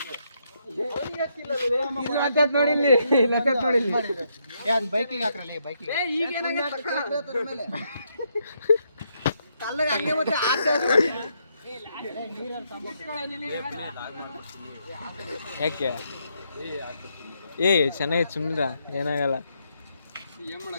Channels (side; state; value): both; inverted; correlation -0.77